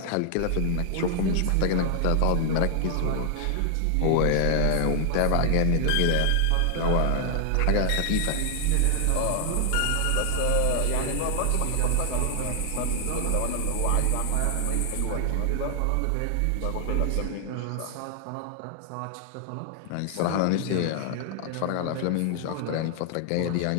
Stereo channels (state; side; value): different; both; correlation 0.00